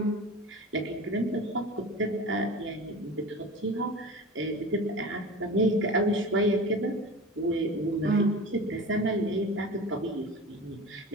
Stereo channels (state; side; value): normal; both; correlation 0.33